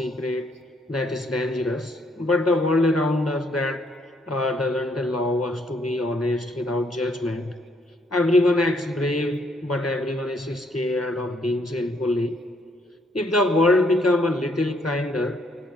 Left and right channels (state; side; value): normal; both; correlation 0.70